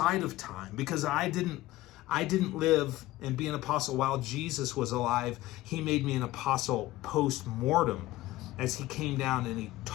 of time, because I didn't live and be an apostle while Jesus was alive. He made me an apostle post-mortem as he came down and he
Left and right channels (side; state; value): right; quieter; 17.0 dB